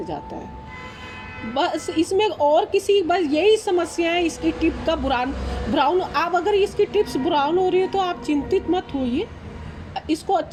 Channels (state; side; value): identical; both; correlation 1.00